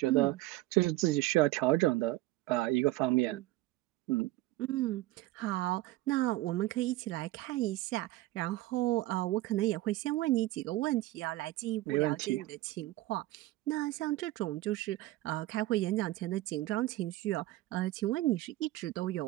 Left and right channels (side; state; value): left; quieter; 17.3 dB